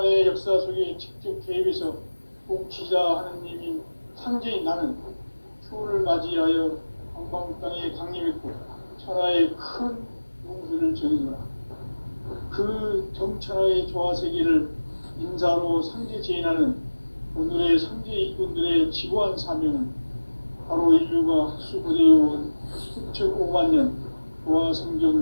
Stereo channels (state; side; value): inverted; both; correlation -1.00